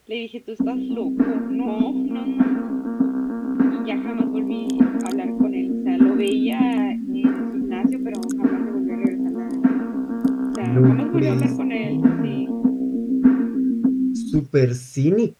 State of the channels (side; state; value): both; identical; correlation 1.00